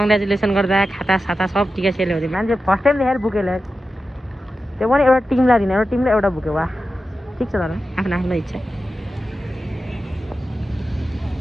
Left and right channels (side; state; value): both; normal; correlation 0.92